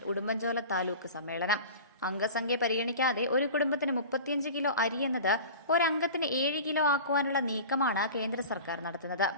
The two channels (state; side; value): inverted; both; correlation -0.37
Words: Udumbanchola taluk സമ്മേളനം. അംഗസംഖ്യ പരിഗണിക്കാതെ ഒരു കുടുംബത്തിന് 35 കിലോ അരി എന്നത് ഒരംഗത്തിന് 7 കിലോ ആക്കുവാനുള്ള നീക്കമാണ് കേന്ദ്ര സർക്കാർ നടത്തുന്നത്.